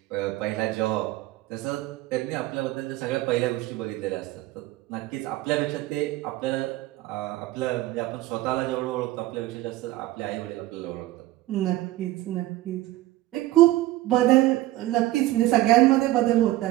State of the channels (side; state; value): left; quieter; 16.6 dB